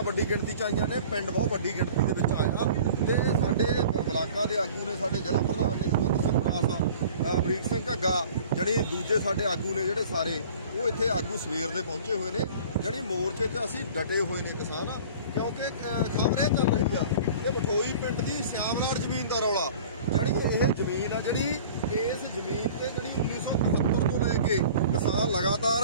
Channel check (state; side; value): inverted; both; correlation -0.44